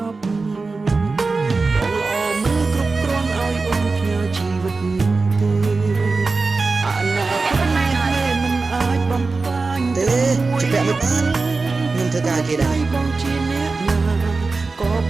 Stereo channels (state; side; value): quieter; left; 3.9 dB